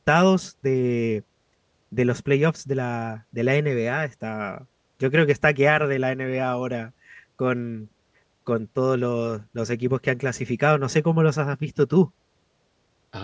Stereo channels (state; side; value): identical; both; correlation 1.00